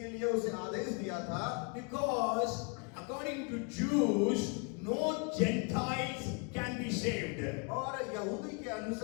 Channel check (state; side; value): quieter; right; 34.7 dB